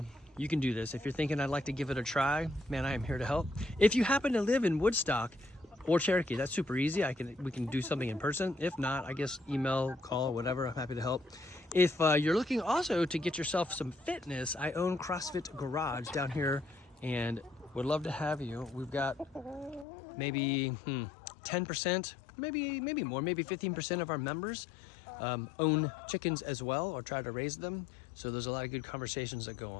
You can do this. If you're thinking I'd like to give it a try, man, I am here to help. If you happen to live in Woodstock or Cherokee, that's super easy. We can do something in person. If not, I guess email, call, whatever. I'm happy to help. If you're looking also to get yourself some fitness, I own CrossFit Garage down here and would love to have you. We've got maybe 10%, maybe more, maybe 15% of our members own chickens as well, or try to raise them. So there's a lot of good conversations that go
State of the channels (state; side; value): drops out; right; at 19.9 s